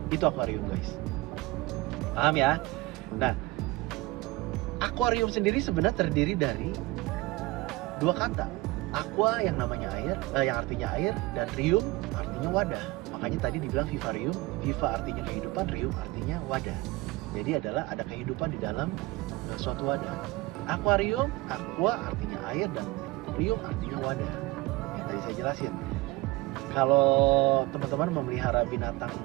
itu akuarium guys. Paham ya? Nah, akuarium sendiri sebenarnya terdiri dari dua kata. Aqua yang namanya air, yang artinya air, dan rium artinya wadah. Makanya tadi dibilang vivarium, viva artinya kehidupan, rium artinya wadah. Jadi adalah ada kehidupan di dalam suatu wadah. Akuarium, aqua artinya air, dan rium artinya wadah. Yang tadi saya jelasin. Kalau teman-teman memelihara binatang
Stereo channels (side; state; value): left; quieter; 20.8 dB